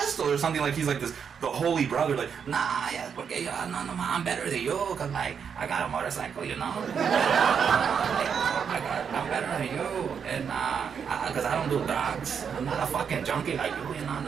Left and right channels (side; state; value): left; quieter; 7.0 dB